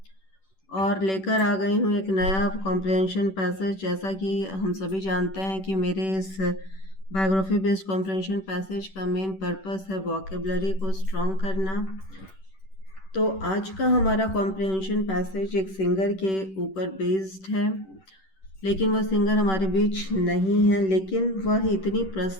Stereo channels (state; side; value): late; right; 10 ms